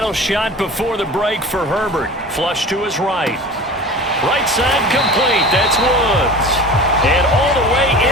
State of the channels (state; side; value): normal; both; correlation 0.36